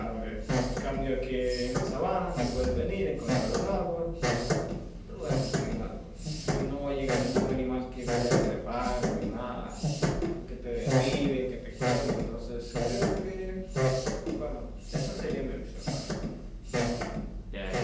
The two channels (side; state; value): both; identical; correlation 1.00